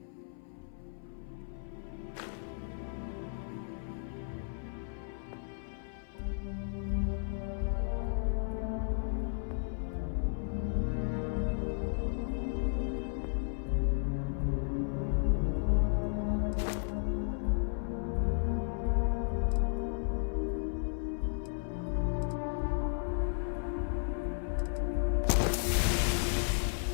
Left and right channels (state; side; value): silent; right; 55 dB below the other